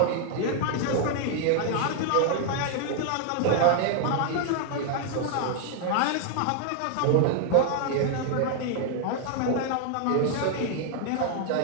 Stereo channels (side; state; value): both; different; correlation 0.00